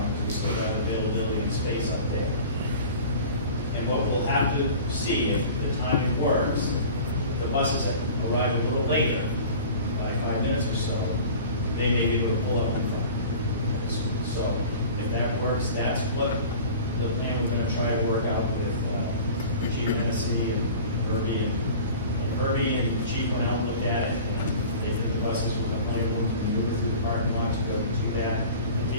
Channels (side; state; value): both; inverted; correlation -0.41